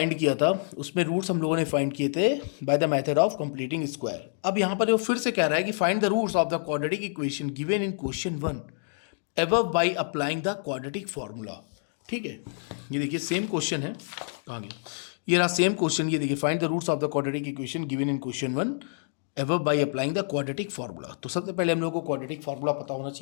किया था। उसमें रूट्स हम लोगों ने फाइंड किए थे by the method of completing square. अब यहाँ पर वो फिर से कह रहा है कि find the roots of the quadratic equation given in question 1 above by applying the quadratic formula. ठीक है, ये देखिए सेम क्वेश्चन है। कहाँ गया? ये रहा सेम क्वेश्चन। ये देखिए, find the roots of the quadratic equation given in question 1 above by applying the quadratic formula. तो सबसे पहले हम लोग को क्वाड्रेटिक फार्मूला पता होना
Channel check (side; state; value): right; silent; digital silence